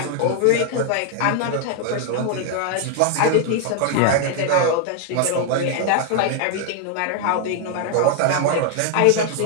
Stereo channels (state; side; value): different; both; correlation 0.00